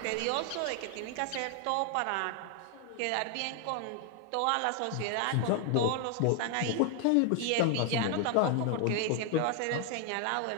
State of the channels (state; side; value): different; both; correlation 0.00